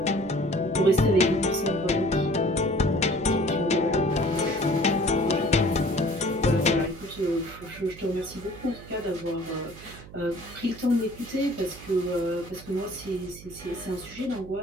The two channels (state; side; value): noise; right; hum, 17 dB below the sound